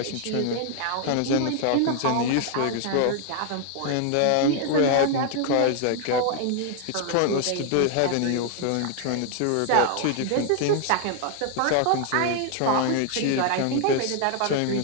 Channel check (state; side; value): different; both; correlation 0.00